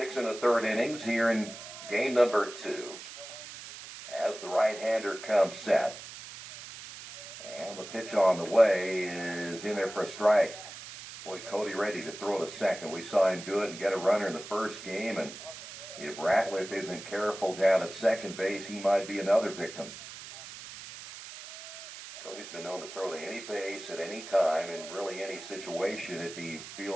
1/3 innings here in game number 2. As the right-hander comes set. And the pitch on the way is in there for a strike. Boy, Cody ready to throw to second. We saw him do it and get a runner in the first game. And if Ratliff isn't careful down at second base, he might be another victim. Cody's been known to throw to any base at any time in really any situation if he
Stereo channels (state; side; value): noise; right; hiss, 13 dB below the sound